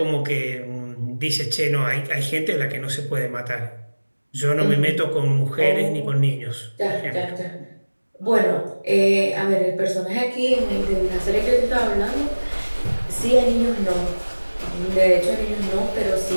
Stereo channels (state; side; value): inverted; both; correlation -1.00